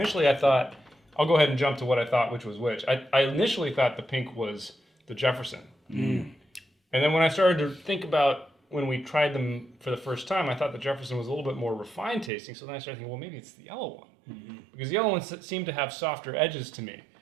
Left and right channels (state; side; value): drops out; left; at 12.3 s